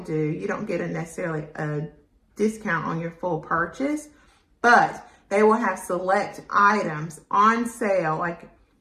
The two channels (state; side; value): identical; both; correlation 1.00